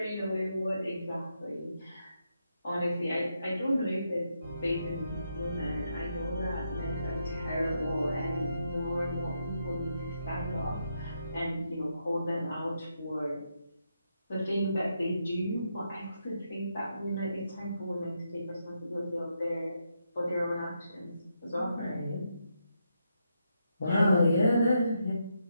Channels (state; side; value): inverted; both; correlation -0.81